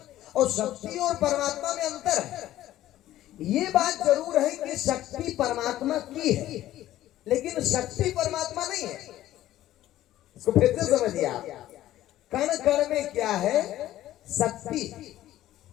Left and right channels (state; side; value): quieter; right; 13.9 dB